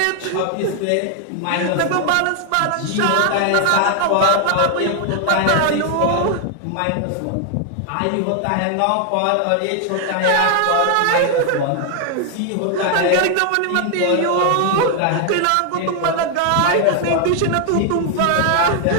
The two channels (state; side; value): different; both; correlation 0.00